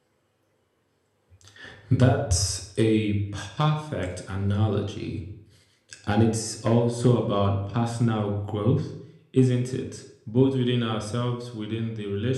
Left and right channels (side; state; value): both; identical; correlation 1.00